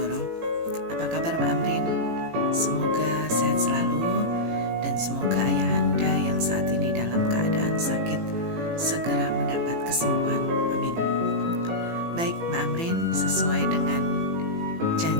Apa kabar Mbak Amrin? Semoga sehat selalu dan semoga ayah Anda yang saat ini dalam keadaan sakit segera mendapat kesembuhan. Amin. Baik Mbak Amrin, sesuai dengan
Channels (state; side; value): late; left; 18 ms